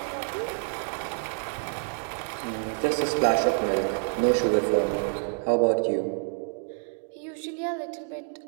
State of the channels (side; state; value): left; silent; 59 dB below the other